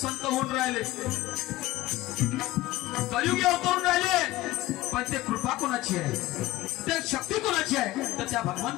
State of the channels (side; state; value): right; quieter; 17.3 dB